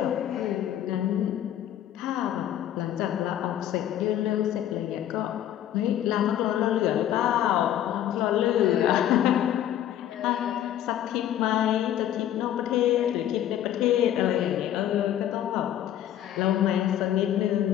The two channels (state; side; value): quieter; right; 11.4 dB